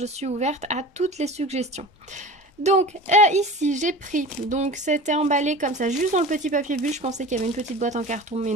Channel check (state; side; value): normal; both; correlation 0.35